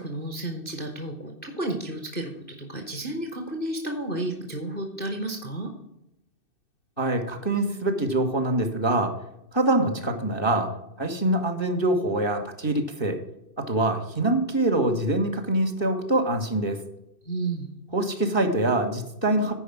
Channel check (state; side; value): late; right; 2.6 ms